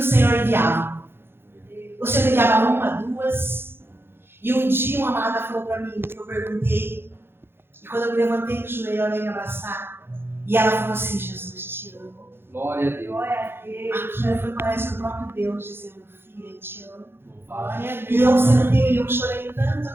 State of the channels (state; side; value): late; left; 0.11 ms